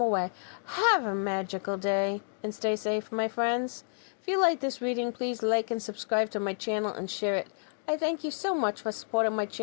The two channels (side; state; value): right; silent; digital silence